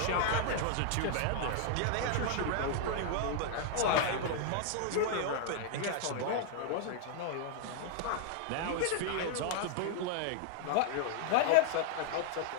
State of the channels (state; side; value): different; both; correlation -0.01